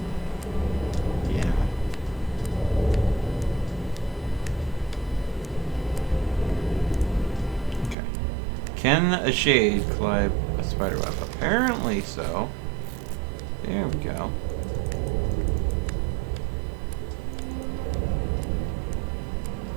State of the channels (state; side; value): drops out; left; at 8.0 s